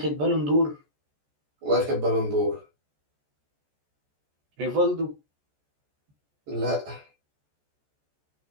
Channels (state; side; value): late; left; 14 ms